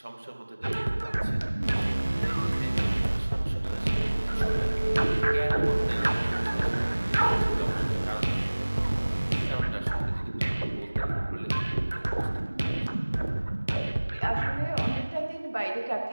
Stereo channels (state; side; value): inverted; both; correlation -1.00